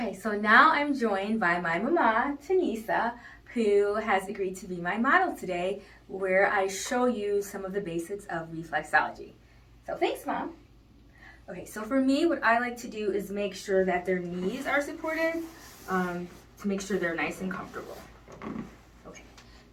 so now I'm joined by my mama, Tanisa, who has agreed to be my model today, where I show you some of the basics of reflexology. So thanks, Mom. Okay, so for me, what I like to do is make sure that their knees are supported to make sure they're nice and comfortable. Okay,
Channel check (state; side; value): identical; both; correlation 1.00